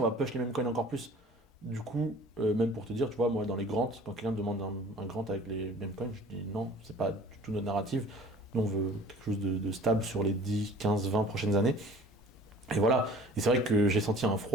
va push les mêmes coins encore plus. Du coup, même pour te dire, tu vois, moi dans les grants, quand quelqu'un me demande un grant avec les mêmes coins, je dis non, c'est pas du tout notre narrative. Nous on veut quelque chose de stable sur les 10, 15, 20 prochaines années. Et voilà. Et c'est vrai que j'ai senti un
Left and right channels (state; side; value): normal; both; correlation 0.47